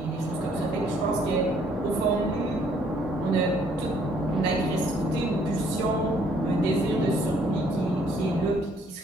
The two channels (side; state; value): both; normal; correlation 0.64